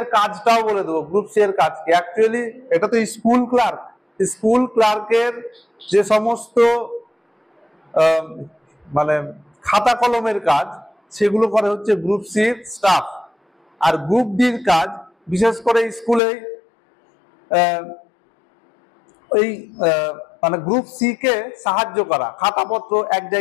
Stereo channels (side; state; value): right; drops out; at 16.2 s